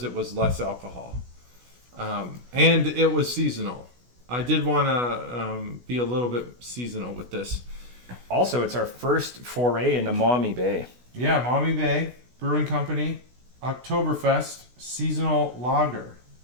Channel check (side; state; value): left; late; 16 ms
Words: it was less alcohol, and it was seasonal. I did want to be a little bit seasonal with this. Also, it's our first foray into Maumee Bay. Yeah, Maumee Bay Brewing Company, Oktoberfest seasonal lager,